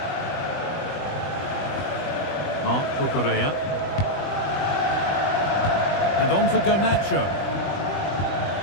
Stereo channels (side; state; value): right; late; 20 ms